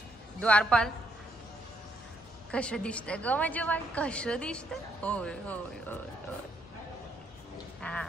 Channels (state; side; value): normal; both; correlation 0.73